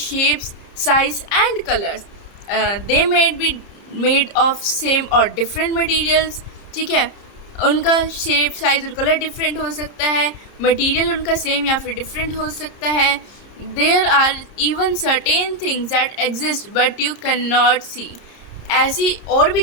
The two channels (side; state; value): right; late; 30 ms